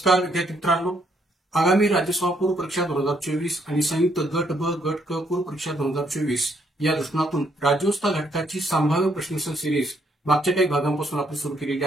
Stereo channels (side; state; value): both; normal; correlation 0.72